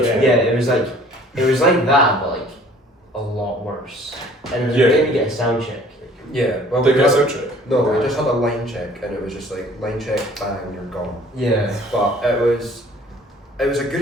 Yeah, it was like that, but like a lot worse. And it was made me get a sound check. Yeah. Well, They got a sound check. No, we just had a line check, and it was just like line check, bang, you're gone. Yeah. But it was a good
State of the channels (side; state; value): both; normal; correlation 0.53